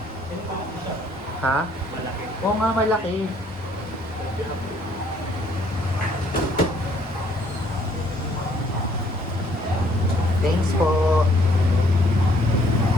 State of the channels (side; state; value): both; normal; correlation 0.64